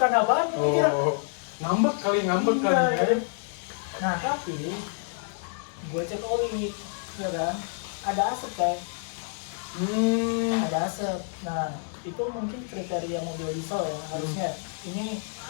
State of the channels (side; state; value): right; silent; 59 dB below the other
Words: apaan kira? Oh, ngambek kali Iya, ya. ya. Nah tapi gue cek oli, ya kan, ada asap kayak, ada asap. Nah itu mungkin kriteria mobil diesel ya harusnya. Ini